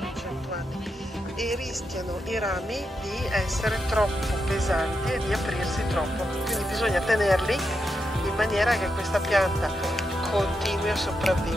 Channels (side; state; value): both; normal; correlation 0.85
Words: 100 anni, e rischiano i rami di essere troppo pesanti e di aprirsi troppo, quindi bisogna tenerli in maniera che questa pianta continui a